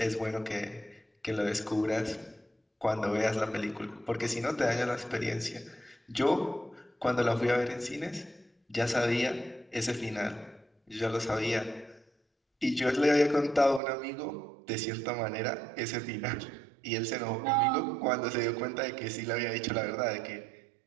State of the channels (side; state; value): left; drops out; at 13.8 s